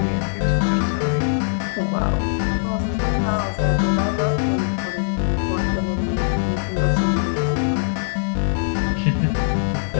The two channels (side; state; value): right; silent; 55 dB below the other